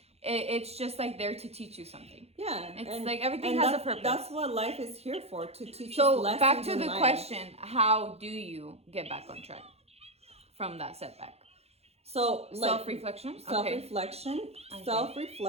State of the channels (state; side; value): late; left; 0.30 ms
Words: it's just like there to teach you something. Yeah. It's like everything has a purpose. That's what life is here for, to teach us So lessons back to in the life. question: how do you get back on track from that setback? So like, Self-reflection. self-reflection,